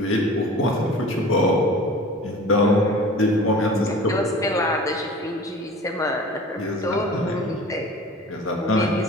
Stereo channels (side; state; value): both; normal; correlation 0.42